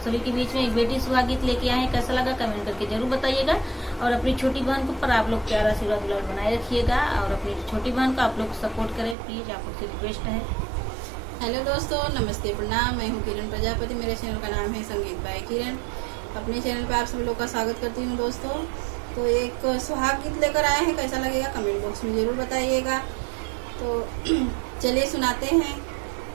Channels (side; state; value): left; drops out; at 9.2 s